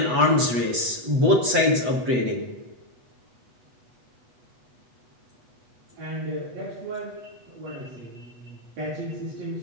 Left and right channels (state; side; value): late; left; 8.1 ms